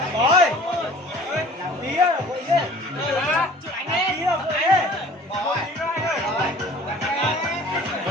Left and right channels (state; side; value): normal; both; correlation 0.48